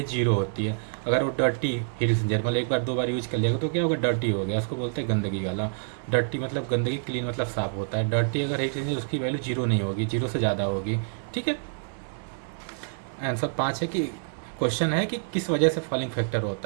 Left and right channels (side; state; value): left; silent; digital silence